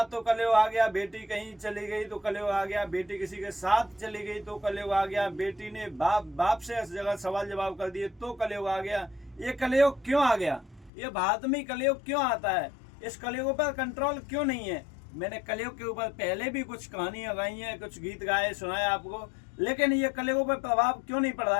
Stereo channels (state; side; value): drops out; right; at 10.9 s